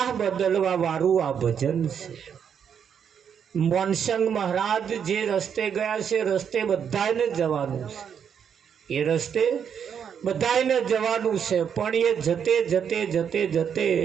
બદલવા વાળું આ ભજન છે. મોનસંગ મહારાજ જે રસ્તે ગયા છે, રસ્તે બધાને જવાનું છે. એ રસ્તે બધાને જવાનું છે, પણ એ જતે જતે જતે જતે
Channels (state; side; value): quieter; left; 7.8 dB